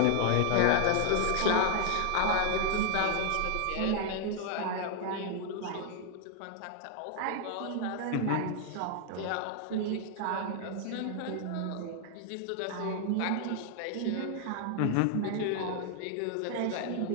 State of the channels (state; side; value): different; both; correlation 0.00